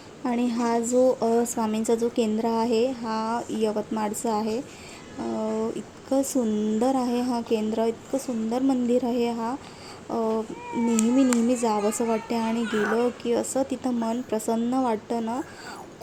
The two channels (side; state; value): both; identical; correlation 1.00